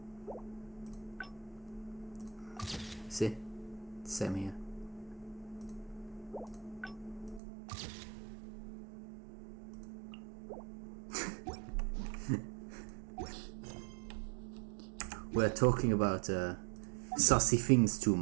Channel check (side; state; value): left; drops out; at 7.4 s